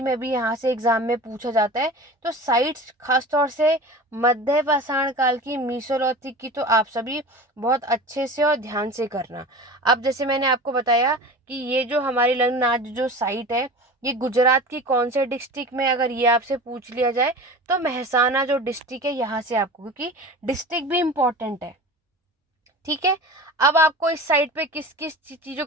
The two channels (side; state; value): both; normal; correlation 0.35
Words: में भी यहाँ से एग्जाम में पूछा जाता है, तो साइट्स खासतौर से मध्य पाषाण काल की मीसोलिथिक की तो आप सभी बहुत अच्छे से और ध्यान से करना। अब जैसे मैंने आपको बताया कि ये जो हमारी लंगनाज जो साइट है ये गुजरात की कौन से डिस्ट्रिक्ट में, अगर ये आपसे पूछ लिया जाए तो मेहसाना जो डिस्ट्रिक्ट है यहाँ से आपको, क्योंकि डिस्ट्रिक्ट भी इम्पोर्टेंट है। ठीक है, अब आपको इस साइट पे किस किस चीज़ों